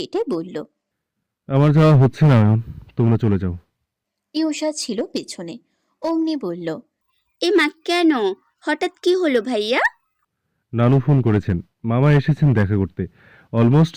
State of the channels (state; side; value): identical; both; correlation 1.00